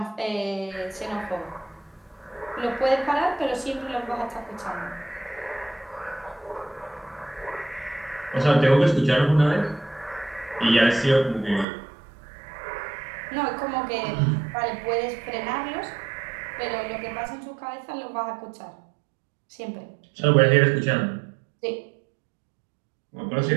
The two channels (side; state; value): left; drops out; at 11.7 s